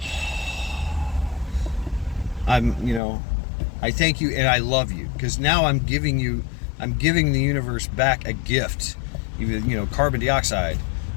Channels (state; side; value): drops out; right; at 3.0 s